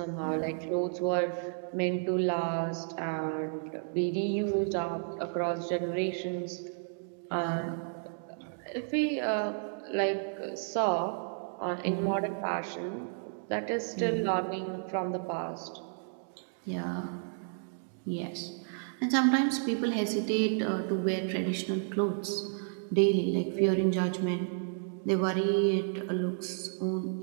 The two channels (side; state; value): left; silent; digital silence